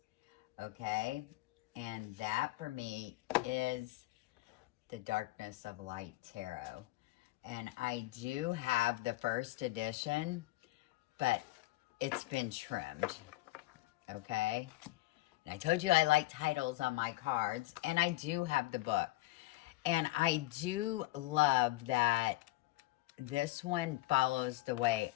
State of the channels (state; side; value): quieter; right; 18.5 dB